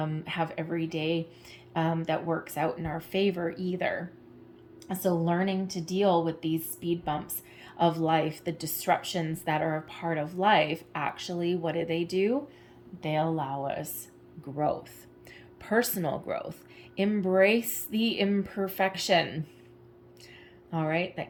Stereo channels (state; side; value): identical; both; correlation 1.00